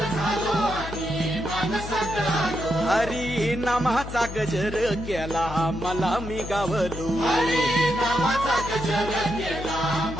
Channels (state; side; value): noise; left; hum, 9 dB below the sound